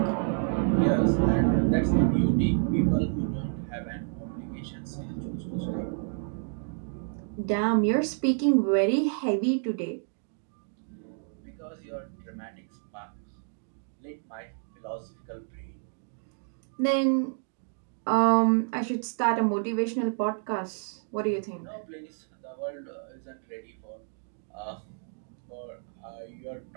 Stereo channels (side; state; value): left; silent; 58 dB below the other